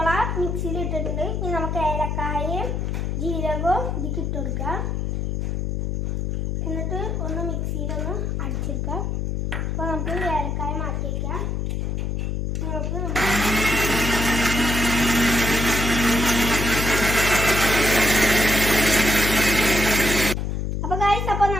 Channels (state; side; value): noise; left; hum, 1 dB below the sound